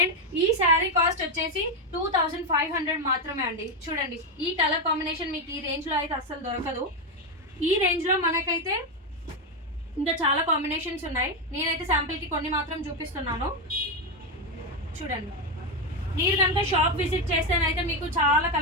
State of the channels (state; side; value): normal; both; correlation 0.07